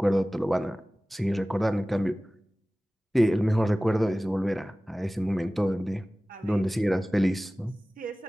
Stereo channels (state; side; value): normal; both; correlation 0.98